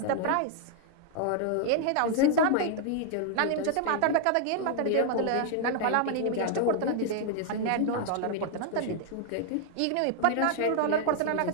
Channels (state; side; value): different; both; correlation 0.00